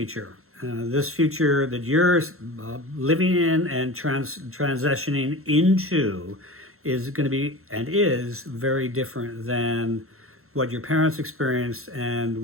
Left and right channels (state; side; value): late; left; 0.62 ms